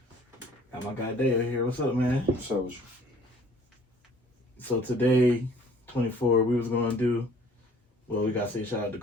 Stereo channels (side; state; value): both; normal; correlation 0.55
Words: Got my guy Dale here. What's up, man? What's up with you? So today, 24, we was going to do, well, we got to say shout out to